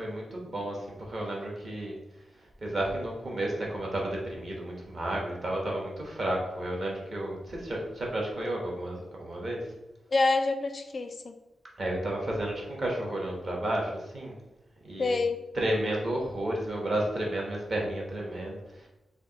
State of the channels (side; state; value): both; normal; correlation 0.88